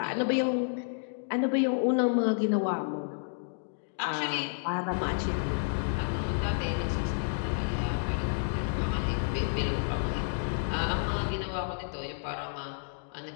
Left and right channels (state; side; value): silent; right; digital silence